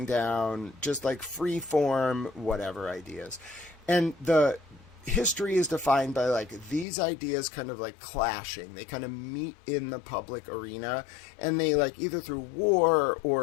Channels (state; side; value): drops out; right; at 6.9 s